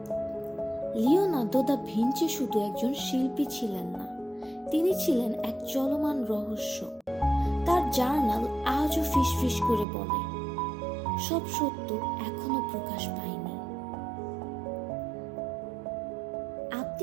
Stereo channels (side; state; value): left; drops out; at 9.9 s